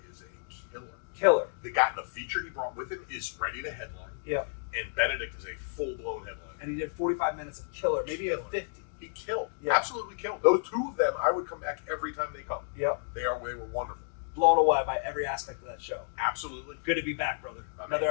is a killer. The guy, the feature he brought with him is ready to headline. Yeah. And Benedict is a full-blown headline. And he did 45 minutes of killer, maybe a 50. He killed. Yeah. Absolutely killed. Those two of them, I would come back every time they come. Yep. They were wonderful. Blown away by every aspect of that show. Absolutely. Good to be back, brother. Another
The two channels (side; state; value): right; silent; digital silence